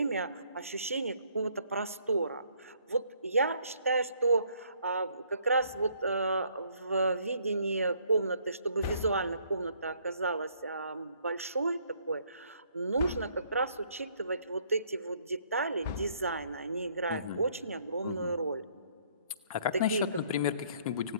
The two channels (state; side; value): inverted; both; correlation -0.65